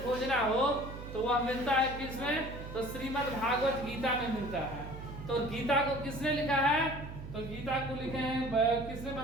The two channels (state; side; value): noise; right; hum, 10 dB below the sound